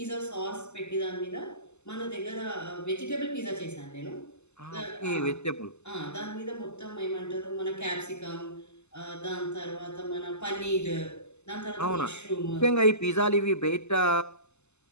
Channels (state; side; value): late; right; 0.82 ms